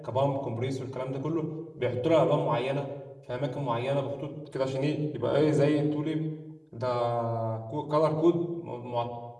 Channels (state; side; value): identical; both; correlation 1.00